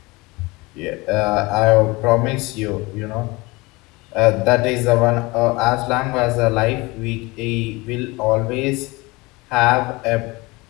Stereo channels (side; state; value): right; quieter; 23.6 dB